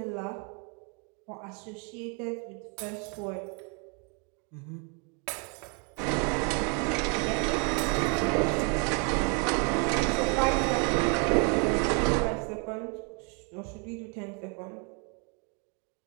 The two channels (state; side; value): quieter; left; 35.9 dB